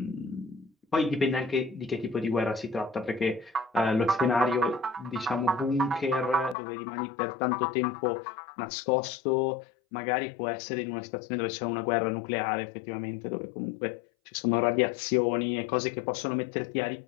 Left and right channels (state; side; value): drops out; right; at 6.6 s